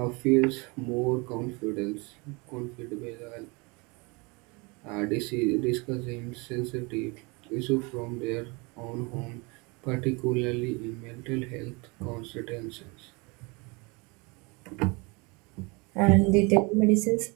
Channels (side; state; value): left; quieter; 28.2 dB